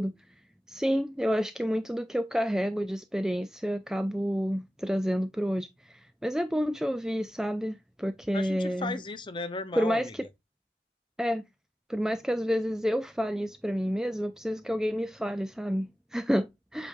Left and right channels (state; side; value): normal; both; correlation 0.94